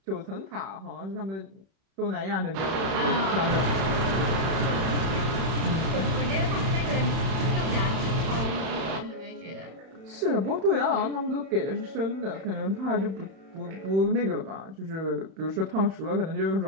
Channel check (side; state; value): left; late; 31 ms